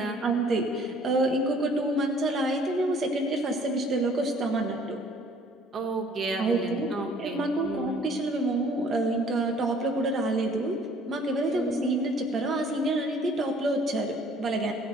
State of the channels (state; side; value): normal; both; correlation 0.56